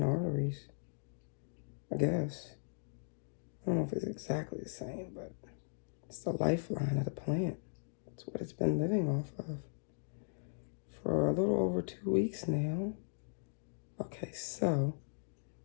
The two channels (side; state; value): right; silent; digital silence